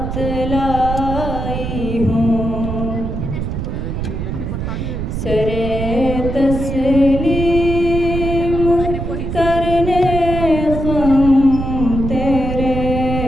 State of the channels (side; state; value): right; noise; rumble, 4 dB below the sound